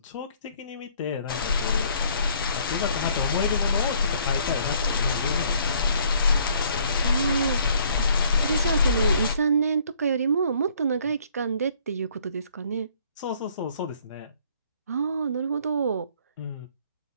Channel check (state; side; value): inverted; both; correlation -0.60